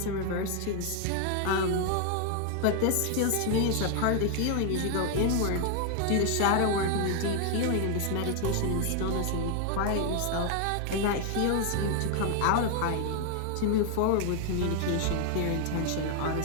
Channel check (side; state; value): both; different; correlation 0.00